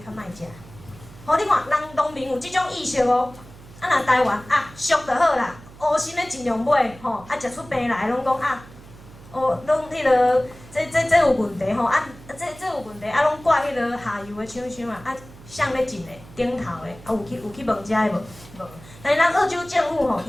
莫食。你看，人农民有即种意识哦。若台湾俗就好啦，乌心的尽量买食出病来拢讲拢迄落，这有问题这有问题拢怪迄落下游的厂商谁咧进的顶头的有去问遮的无？但是咱澳洲政府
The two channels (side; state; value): right; noise; hum, 20 dB below the sound